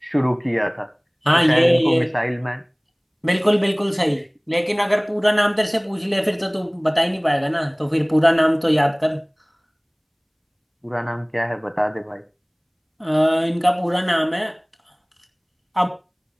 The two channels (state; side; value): identical; both; correlation 1.00